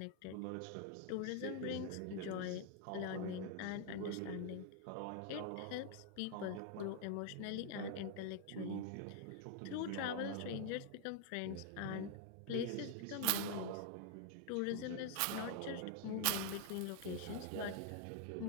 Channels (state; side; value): different; both; correlation 0.00